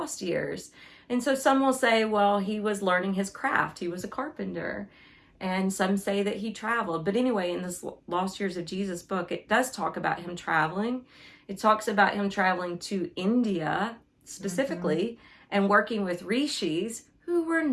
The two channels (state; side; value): identical; both; correlation 1.00